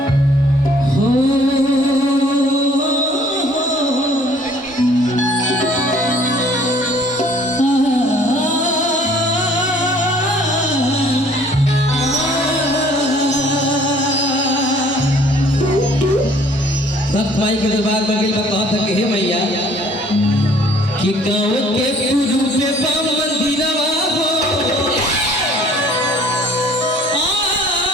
हो भक्त भाई के दरबार में गई कहा था कि हे भैया कि गाँव के पूर्व में बाम मंदिरवा हो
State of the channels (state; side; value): normal; both; correlation 0.57